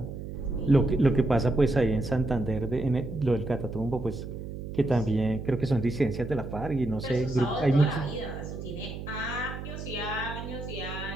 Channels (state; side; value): noise; right; hum, 8 dB below the sound